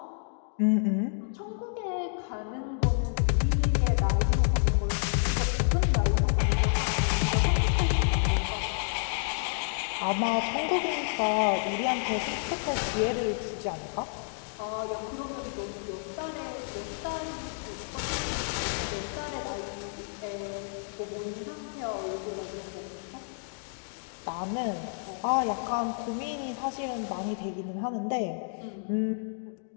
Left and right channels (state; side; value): silent; right; digital silence